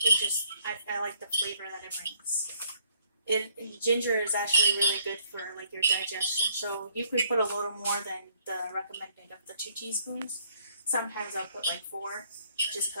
it just I like the flavor that it brings. Ginger is actually really good for like your digestion, so you could put a little more than the recommended of the 2 teaspoons. Sometimes I'll put like 4, just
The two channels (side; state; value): both; inverted; correlation -0.66